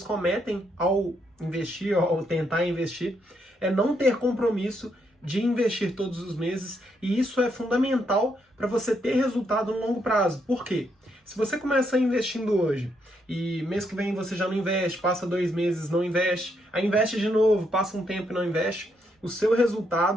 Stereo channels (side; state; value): both; normal; correlation 0.76